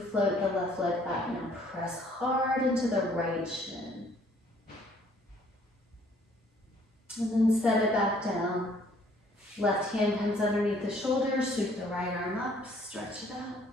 float the left leg back. Now press hard into the right shin. And then set it back down. Left hand comes underneath the shoulders, sweep the right arm up, stretch it out.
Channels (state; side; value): normal; both; correlation 0.61